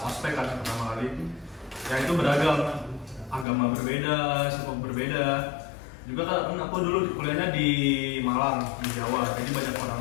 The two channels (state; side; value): drops out; right; at 3.5 s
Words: ospek kan pertama kali. Ya itu beragam, agama berbeda, suku berbeda. Juga kan aku dulu kuliahnya di Malang, di Jawa, jadi banyak